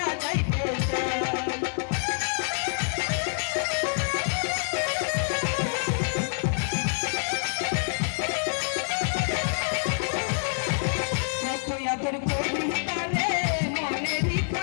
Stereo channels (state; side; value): silent; right; 59 dB below the other